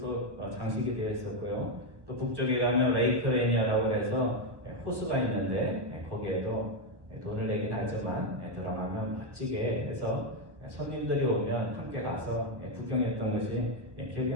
장식이 되어 있었고요. 또 북쪽에 가면 레이크 레니어라고 해서 호수가 있는데 거기에도 돈을 내긴 하지만 들어가면 멋지게 해서 손님들이 오면 함께 가서 구경했던 것이 기억이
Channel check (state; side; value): late; left; 1.3 ms